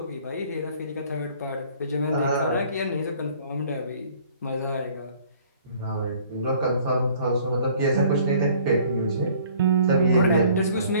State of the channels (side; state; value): both; inverted; correlation -0.55